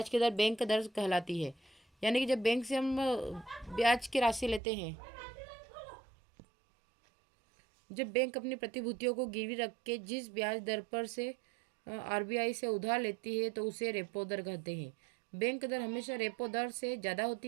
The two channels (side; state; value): left; drops out; at 4.6 s